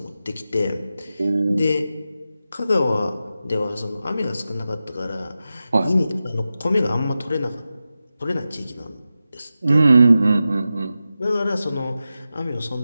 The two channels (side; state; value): both; inverted; correlation -0.93